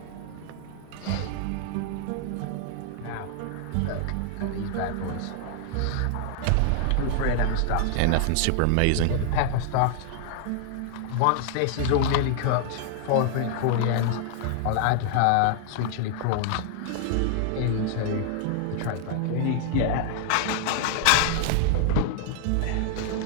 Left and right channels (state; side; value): different; both; correlation 0.00